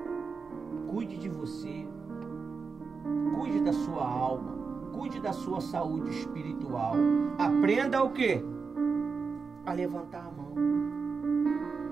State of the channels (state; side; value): quieter; left; 5.0 dB